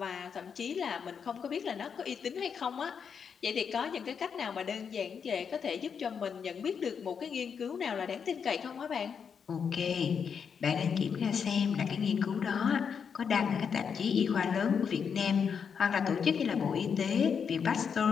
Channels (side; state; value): right; quieter; 6.7 dB